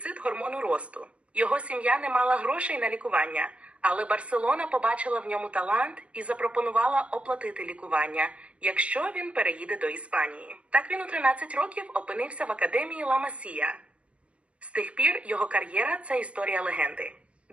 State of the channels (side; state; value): left; late; 0.061 ms